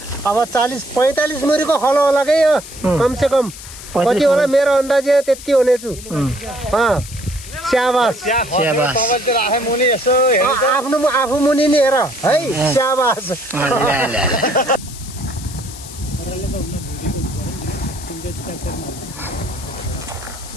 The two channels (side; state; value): left; noise; hiss, 14 dB below the sound